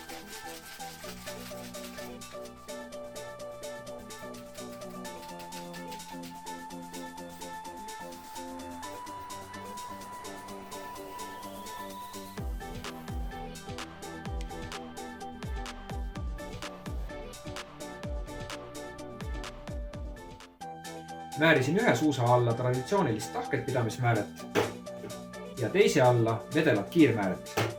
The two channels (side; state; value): both; identical; correlation 1.00